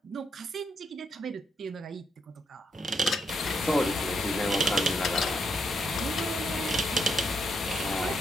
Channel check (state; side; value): normal; both; correlation 0.78